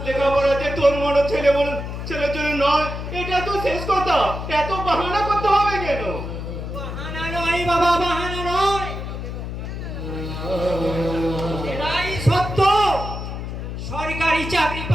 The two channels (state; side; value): noise; left; hum, 6 dB below the sound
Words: লেখাপড়াতে তোর মনে ছেলের জন্য নয়, এটা তো শেষ কথা। এত বাহানা করতে হবে কেন? বাহানা নয় বাবা, বাহানা নয়, এটাই সত্য। সরকারি চাকরি